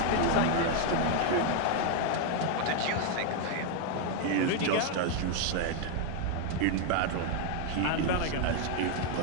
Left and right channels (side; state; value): both; different; correlation 0.01